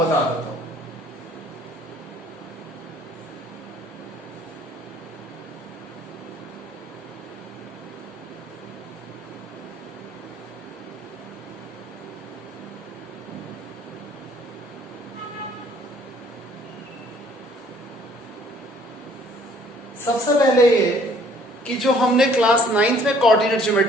बता देता हूं। सबसे पहले ये कि जो हमने क्लास 9th में कोऑर्डिनेट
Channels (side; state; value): both; normal; correlation 0.59